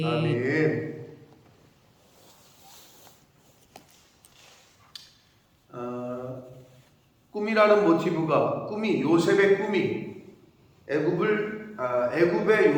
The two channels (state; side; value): identical; both; correlation 1.00